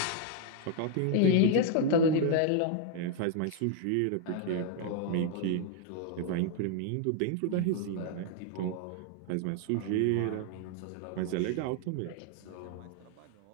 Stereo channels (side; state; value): both; different; correlation 0.00